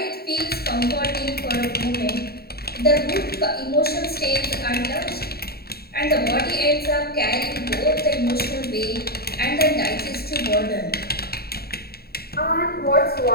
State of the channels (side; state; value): right; late; 0.45 ms